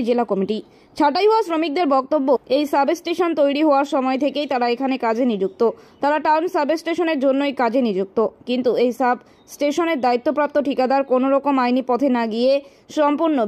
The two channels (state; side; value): identical; both; correlation 1.00